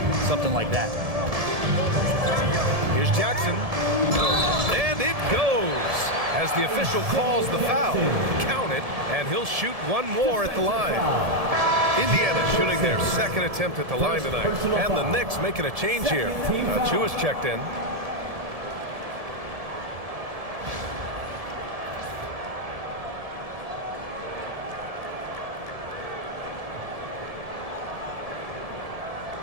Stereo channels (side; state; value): left; late; 1.7 ms